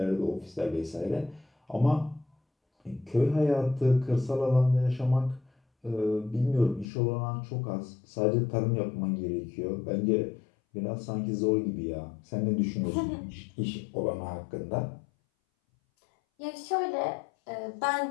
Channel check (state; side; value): drops out; right; at 6.9 s